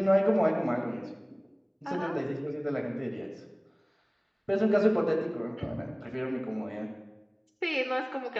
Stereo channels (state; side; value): identical; both; correlation 1.00